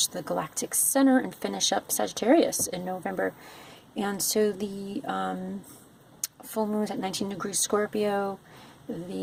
the galactic center and finish up Sagittarius in November. And so the full moon is at 19 degrees Scorpio.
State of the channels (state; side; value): identical; both; correlation 1.00